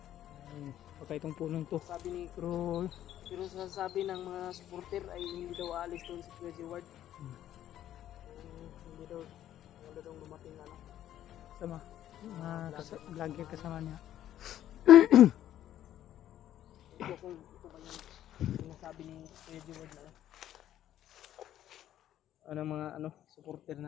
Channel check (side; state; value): right; quieter; 11.9 dB